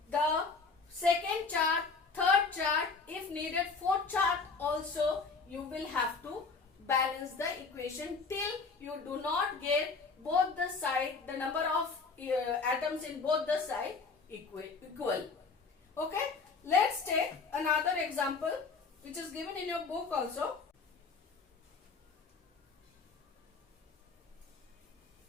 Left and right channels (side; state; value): right; quieter; 4.5 dB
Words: the second chart, third third chart, if needed, fourth chart also you will have to balance the equation till you do not get both the side, the number of atoms in both the side equal. Okay, let's take another example which is given in your book also.